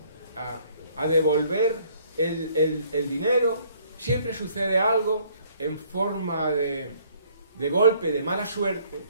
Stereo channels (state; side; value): inverted; both; correlation -0.61